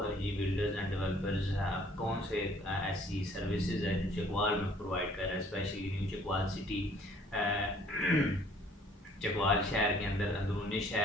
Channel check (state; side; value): normal; both; correlation 0.58